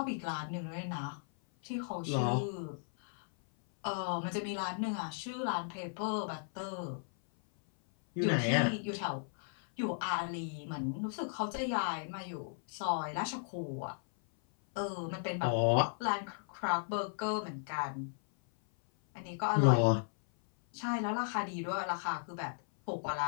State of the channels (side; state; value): right; silent; 54 dB below the other